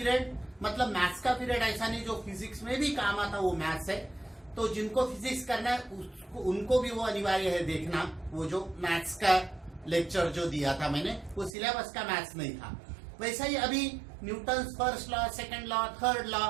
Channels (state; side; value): drops out; left; at 11.6 s